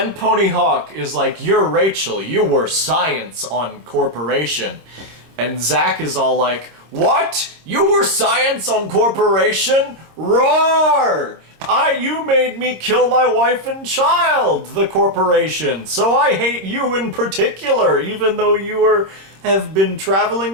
Pony Hawk is like, you're Rachel, you were science on Corporation. And Zach is all like, what? You were science on Corporation? Roar! You made me kill my wife and child, the Corporation, so I hate you in particular, even though you have been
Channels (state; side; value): late; left; 26 ms